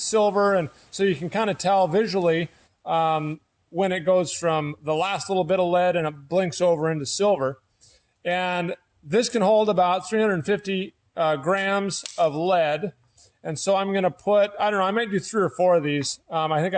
And so you can kind of tell visually when it goes from the last little bit of lead and it blinks over into silver. And this can hold about 350 grams of lead. And so I'm going to put, I don't know, I might do 3 or 4 of these. I think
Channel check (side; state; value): both; identical; correlation 1.00